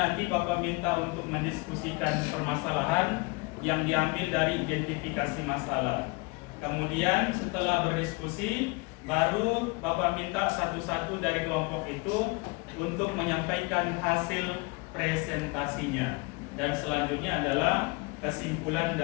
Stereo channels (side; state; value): right; quieter; 27.9 dB